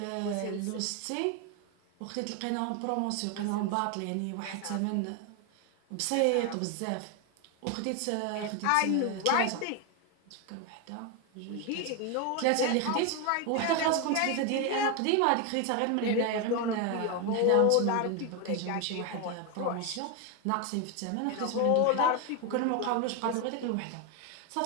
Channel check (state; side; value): different; both; correlation 0.01